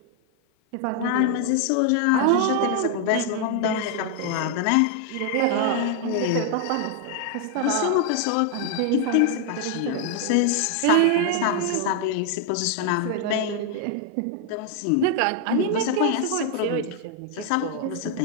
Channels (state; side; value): different; both; correlation 0.00